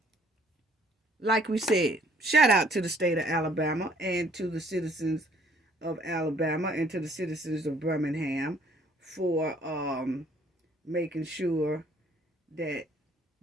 like we said, shout out to the state of Alabama and to the citizens of Alabama and to the citizens of Birmingham for making sure that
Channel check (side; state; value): both; normal; correlation 0.61